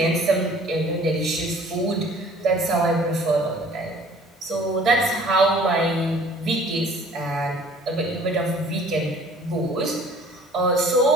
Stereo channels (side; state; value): both; normal; correlation 0.52